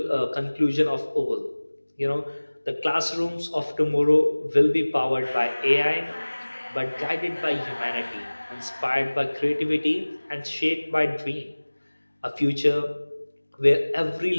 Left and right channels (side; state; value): both; inverted; correlation -1.00